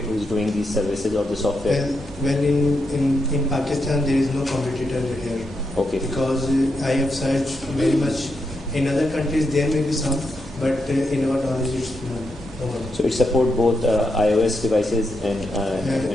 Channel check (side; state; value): both; normal; correlation 0.83